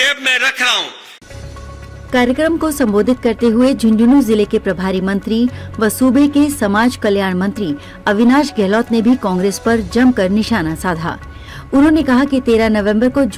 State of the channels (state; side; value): identical; both; correlation 1.00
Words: में रख रहा हूं। कार्यक्रम को संबोधित करते हुए झुंझुनू जिले के प्रभारी मंत्री व सूबे के समाज कल्याण मंत्री अविनाश गहलोत ने भी कांग्रेस पर जमकर निशाना साधा। उन्होंने कहा कि 13 नवंबर को